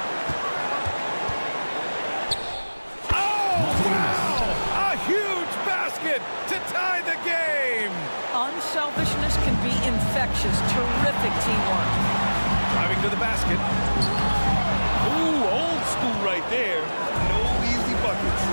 Unselfishness can be infectious. Terrific teamwork. Driving to the basket. Ooh, old school right there. No easy buckets.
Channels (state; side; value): inverted; both; correlation -1.00